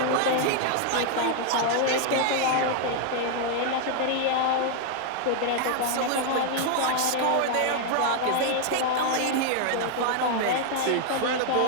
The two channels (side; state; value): both; different; correlation 0.00